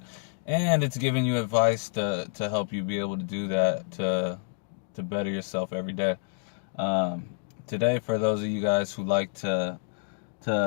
And it's giving you advice to help you be able to do that, to better yourself every day. Today, for those of you guys who like to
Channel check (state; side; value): silent; right; digital silence